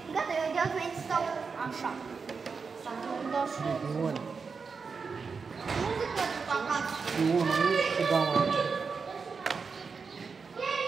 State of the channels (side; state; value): left; quieter; 5.2 dB